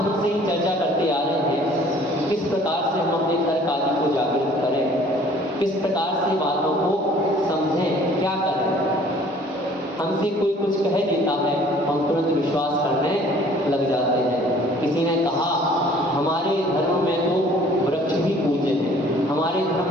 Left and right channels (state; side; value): normal; both; correlation 0.54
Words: से ही चर्चा करते आ रहे हैं, किस प्रकार से हम अपने तर्क आदि को जागृत करें। किस प्रकार से बातों को समझें, क्या करें। हमसे कोई कुछ कह देता है, हम तुरंत विश्वास करने लग जाते हैं। किसी ने कहा हमारे धर्म में तो वृक्ष भी पूज्य है, हमारे